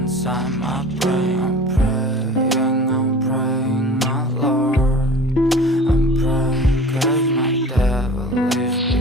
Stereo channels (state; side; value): normal; both; correlation 0.40